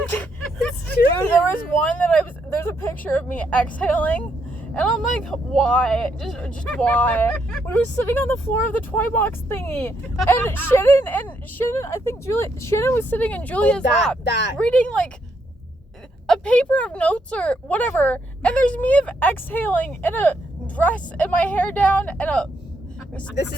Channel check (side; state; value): both; normal; correlation 0.76